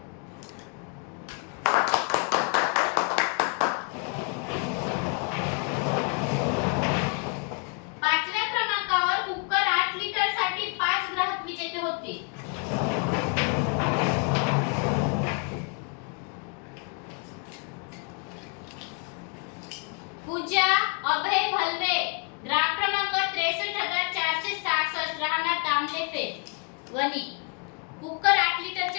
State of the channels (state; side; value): quieter; right; 36.6 dB